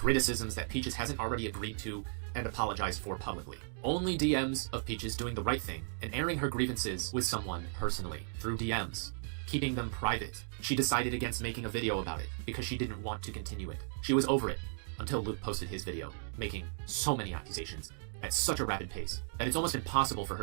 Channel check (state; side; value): silent; left; digital silence